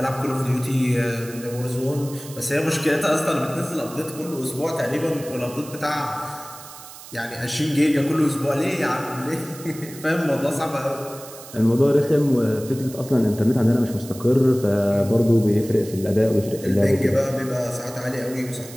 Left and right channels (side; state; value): right; noise; hiss, 16 dB below the sound